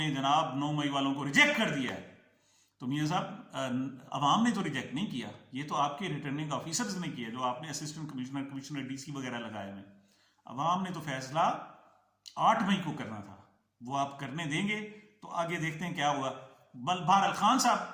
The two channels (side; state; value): both; identical; correlation 1.00